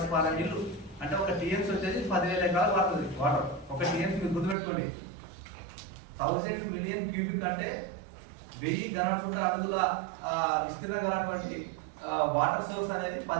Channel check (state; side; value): drops out; left; at 4.5 s